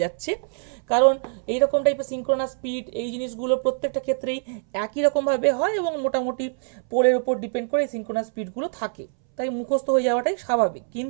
যাচ্ছে, কারণ এইরকম টাইপের সিনক্রোনাস স্পিড এই জিনিসগুলো প্রত্যেকটা ক্ষেত্রেই একই রকমভাবে হয় এবং মোটামুটি পোলের উপর ডিপেন্ড করে এই সিনক্রোনাস স্পিডগুলো থাকে, তাই মুখস্থ হয়ে যাওয়াটাই স্বাভাবিক।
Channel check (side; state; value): left; silent; 62 dB below the other